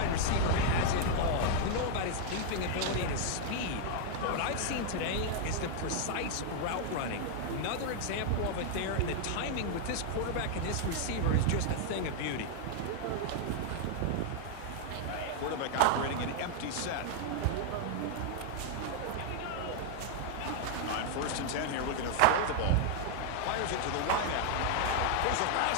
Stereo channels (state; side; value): different; both; correlation -0.01